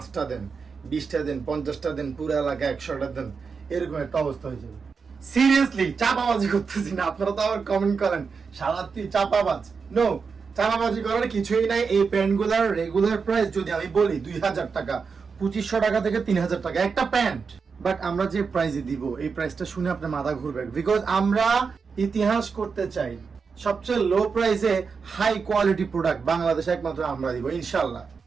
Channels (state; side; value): quieter; left; 5.4 dB